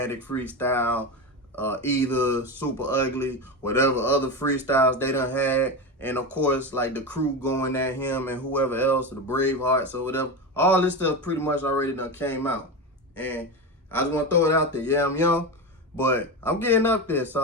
freestyle, either Super Ugly, whatever other freestyles they done had. And of course, like the crew going at him and whoever else, the Bravehearts or whatever. All this stuff pretty much already done came out. And I just want to throw it out there. Yeah, I'm young, but I'm getting up there. So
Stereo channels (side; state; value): both; normal; correlation 0.19